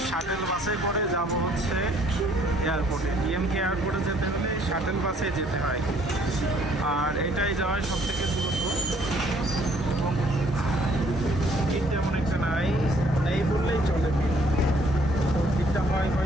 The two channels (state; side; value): normal; both; correlation 0.62